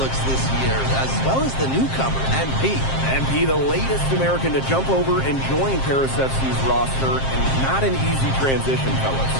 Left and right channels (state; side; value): late; right; 7.5 ms